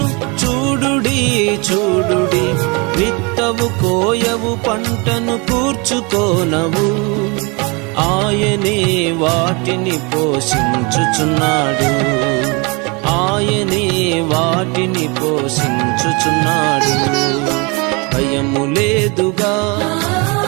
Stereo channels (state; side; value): quieter; left; 29.6 dB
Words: చూడుడి చూడుడి, విత్తవు కోయవు పంటను కూర్చుకోనవు. ఆయనే వాటిని పోషించుచున్నాడు, ఆయనే వాటిని పోషించుచున్నాడు. భయము లేదుగా,